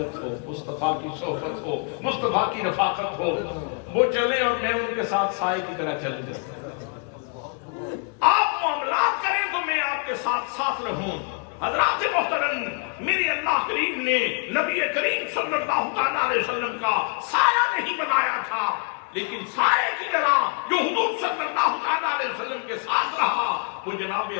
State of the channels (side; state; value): right; quieter; 38.2 dB